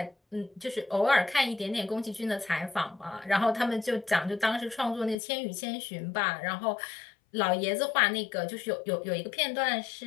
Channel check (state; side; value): drops out; right; at 5.2 s